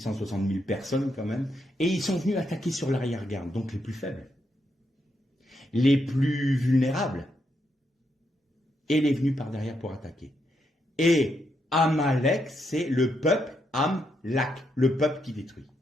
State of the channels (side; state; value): both; normal; correlation 0.80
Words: 000 personnes quand même, et ils sont venus attaquer sur l'arrière-garde, donc les plus faibles, les plus vulnérables, et les venus par derrière pour attaquer. Et Amalek, c'est le peuple Amlak, le peuple qui détruit.